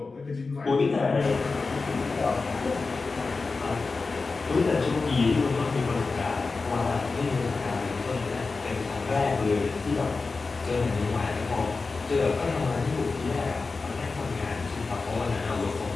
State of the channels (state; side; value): quieter; right; 4.1 dB